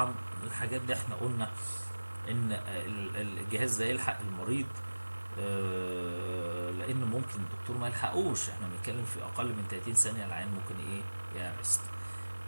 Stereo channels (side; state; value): both; inverted; correlation -1.00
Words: الحاجات دي احنا قلنا ان الجهاز ده يلحق المريض، لان ممكن الدكتور ما يلحقوش، احنا بنتكلم في اقل من 30 ثانيه العين ممكن ايه يارست.